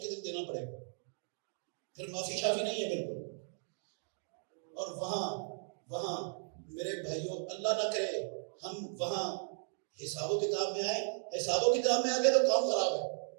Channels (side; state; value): left; silent; digital silence